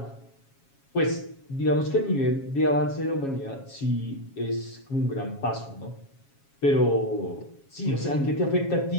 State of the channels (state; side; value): late; right; 7.3 ms